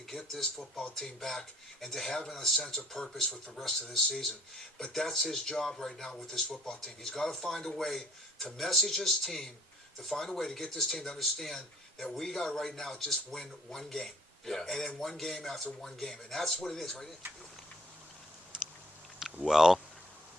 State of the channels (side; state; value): both; normal; correlation 0.60